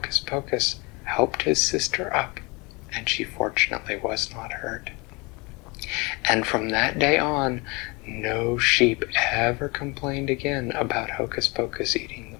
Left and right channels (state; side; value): quieter; right; 27.0 dB